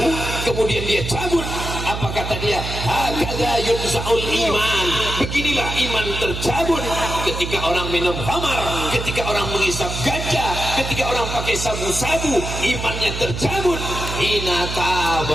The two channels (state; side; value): noise; right; hum, 5 dB below the sound